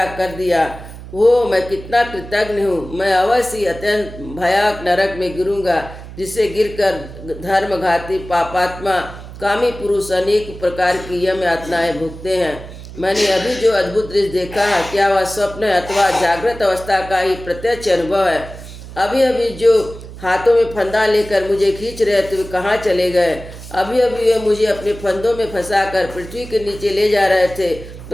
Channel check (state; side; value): noise; right; hum, 14 dB below the sound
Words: कर दिया। वो मैं कितना कृतज्ञ हूँ। मैं अवश्य अत्यंत भयानक नरक में गिरूंगा, जिससे गिरकर धर्मघाती पापात्मा कामी पुरुष अनेक प्रकार की यम यातनाएं भुगते हैं। मैंने अभी जो अद्भुत दृश्य देखा है, क्या वह स्वप्न है अथवा जागृत अवस्था का ही प्रत्यक्ष अनुभव है? अभी अभी जो हाथों में फंदा लेकर मुझे खींच रहे थे, वे कहाँ चले गए? अभी अभी वे मुझे अपने फंदों में फंसाकर पृथ्वी के नीचे ले जा रहे थे,